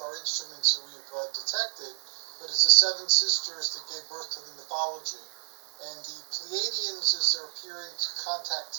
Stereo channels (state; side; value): silent; left; digital silence